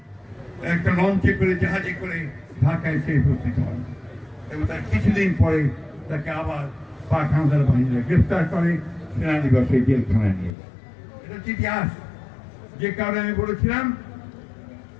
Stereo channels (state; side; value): drops out; right; at 10.5 s